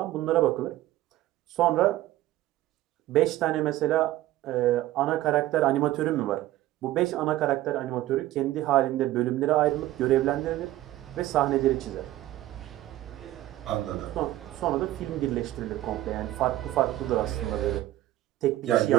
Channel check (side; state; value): left; quieter; 15.3 dB